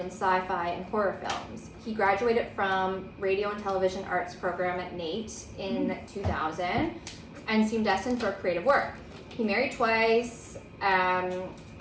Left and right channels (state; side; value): identical; both; correlation 1.00